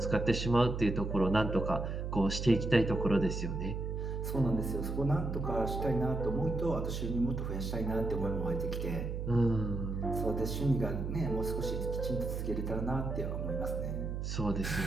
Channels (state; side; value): noise; right; hum, 3 dB below the sound